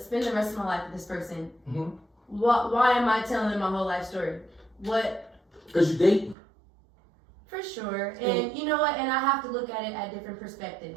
the rest of my life with this person, Mm-hmm. why am I telling them my whole life story? What? Because you dating. For sure. And you know what? And I have to look at it at different perspective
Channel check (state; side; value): drops out; left; at 6.4 s